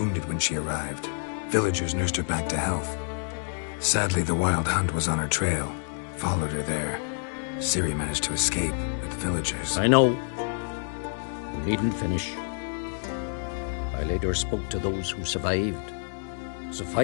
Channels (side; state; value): right; silent; digital silence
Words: when she arrived. Villagers nursed her back to health. Sadly, the Wild Hunt was on her trail. Followed her there. Ciri managed to escape, but the villagers... I know. You needn't finish. I later spoke to those who survived.